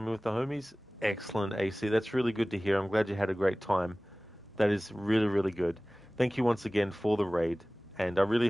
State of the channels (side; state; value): both; normal; correlation 0.98